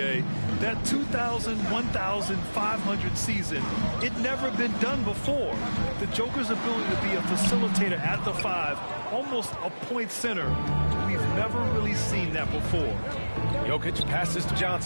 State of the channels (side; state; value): both; inverted; correlation -1.00